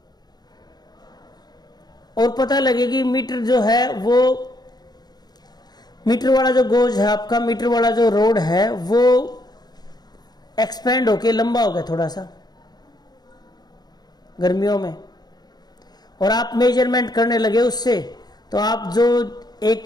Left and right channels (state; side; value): late; right; 0.20 ms